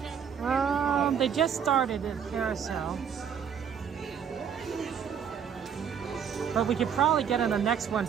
They just started at Carousel. But we could probably get on the next one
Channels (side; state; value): left; quieter; 7.8 dB